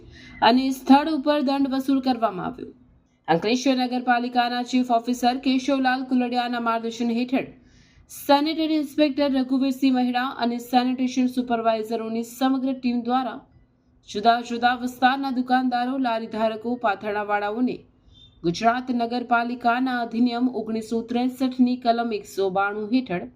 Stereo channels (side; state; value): both; identical; correlation 1.00